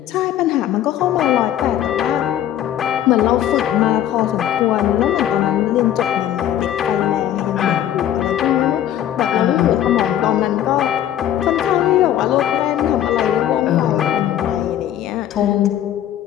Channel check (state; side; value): quieter; right; 11.3 dB